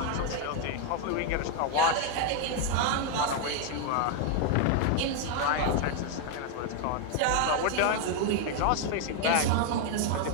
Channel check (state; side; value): different; both; correlation 0.01